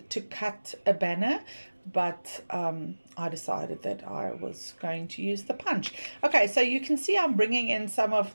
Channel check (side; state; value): both; inverted; correlation -1.00